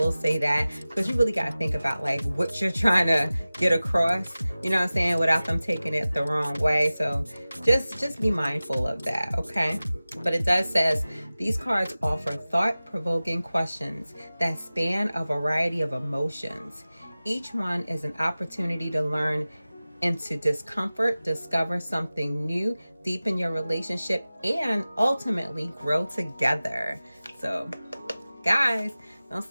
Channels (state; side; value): inverted; both; correlation -0.97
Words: say that, because you really got to think about like what you're trying to get across, you know what I'm saying, without them taking it the wrong way. So just be mindful of that, okay? But it does says these cards offer thought-provoking questions that span a variety of emotions. Each one is an opportunity to learn into discomfort, discover something new, deepen your relationship, and ultimately grow together. So, guys, don't